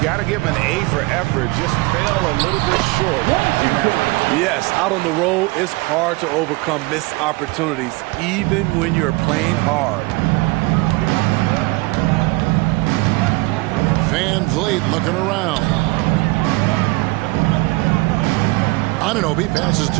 got to give him an A for effort. Just fell a little bit short. Yes, out on the road, it's hard to overcome missed opportunities, even when you're playing hard. Van Vliet looking around. Anunoby passes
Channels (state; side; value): quieter; left; 23.9 dB